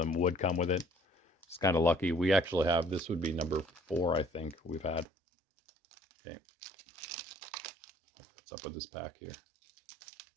would come with it. It's kind of lucky. We actually have, this would be number 4, I think we've had. Okay. What's up with this pack here?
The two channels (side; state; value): left; drops out; at 5.1 s